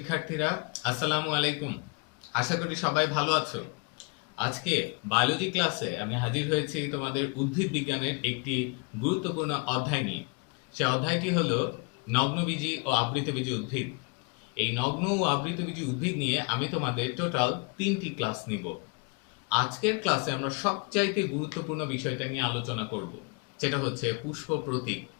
আসসালামু আলাইকুম। আশা করি সবাই ভালো আছো। আজকে বায়োলজি ক্লাসে আমি হাজির হয়েছি তোমাদের উদ্ভিদ বিজ্ঞানের একটি গুরুত্বপূর্ণ অধ্যায় নিয়ে। সে অধ্যায়টি হলো নগ্নবীজি ও আবৃতবীজি উদ্ভিদ। এই নগ্ন ও আবৃতবীজি উদ্ভিদ নিয়ে আমি তোমাদের টোটাল 3টি ক্লাস নিব। আজকের ক্লাসে আমরা সবচাইতে গুরুত্বপূর্ণ বিষয়টা নিয়ে আলোচনা করব, সেটা হচ্ছে পুষ্প প্রতীক।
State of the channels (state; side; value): quieter; right; 32.1 dB